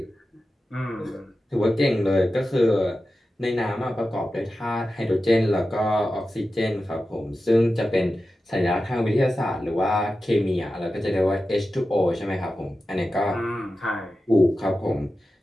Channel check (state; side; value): normal; both; correlation 0.93